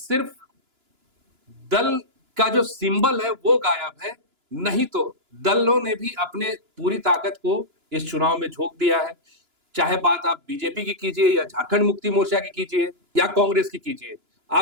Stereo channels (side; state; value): left; late; 2.9 ms